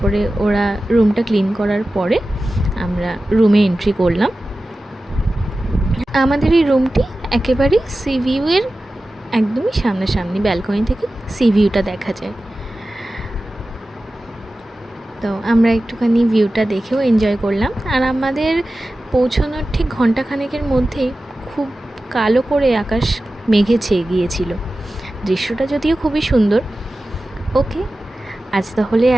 ওরা রুমটা ক্লিন করার পরে আমরা রুমে এন্ট্রি করলাম। আমাদের এই রুমটি একেবারেই সি ভিউয়ের একদমই সামনাসামনি, ব্যালকনি থেকে সি ভিউটা দেখা যায়। তো আমরা একটুখানি ভিউটা দেখেও এনজয় করলাম। আর আমাদের পৌঁছানোর ঠিক ঘণ্টাখানেকের মধ্যেই খুব কালো করে আকাশ মেঘে ছেয়ে গিয়েছিল। দৃশ্যটা যদিও খুবই সুন্দর। ওকে, আজ তাহলে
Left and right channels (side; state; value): both; normal; correlation 0.95